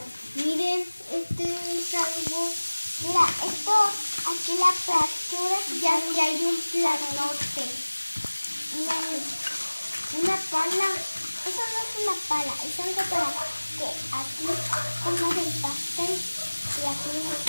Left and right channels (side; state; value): both; inverted; correlation -1.00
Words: Miren, este es algo... Mira, esto, aquí la fractura. Ya que hay un platote. Una pala. Eso no es una pala, es algo para que aquí pongas el pastel y aquí